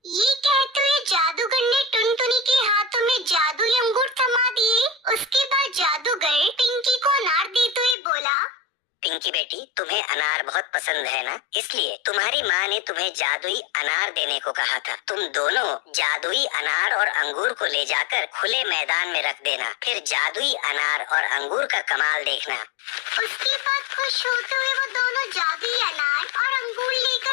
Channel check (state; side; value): drops out; right; at 8.0 s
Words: ये कहते हुए जादूगर ने टुनटुनी के हाथों में जादुई अंगूर थमा दिए। उसके बाद जादूगर पिंकी को अनार देते हुए बोला, पिंकी बेटी, तुम्हें अनार बहुत पसंद है ना, इसलिए तुम्हारी माँ ने तुम्हें जादुई अनार देने को कहा था। तुम दोनों जादुई अनार और अंगूर को ले जाकर खुले मैदान में रख देना, फिर जादुई अनार और अंगूर का कमाल देखना। उसके बाद खुश होते हुए वो दोनों जादुई अनार और अंगूर